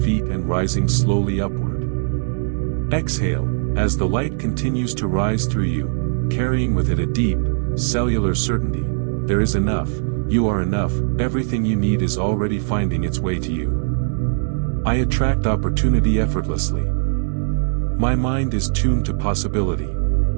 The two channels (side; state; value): left; silent; digital silence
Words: and rising slowly upward. Exhale, as the light continues to rise through you, carrying with it a deep, cellular certainty. There is enough, you are enough, everything you need is already finding its way to you. I attract opportunity effortlessly. My mind is tuned to possibility.